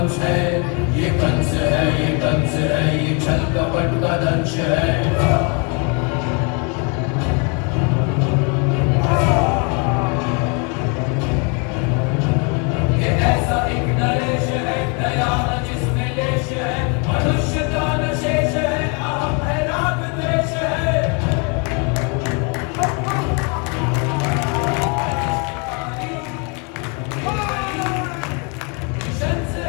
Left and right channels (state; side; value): quieter; right; 34.4 dB